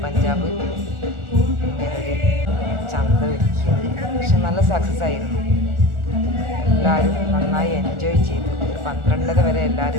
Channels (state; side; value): late; left; 1.4 ms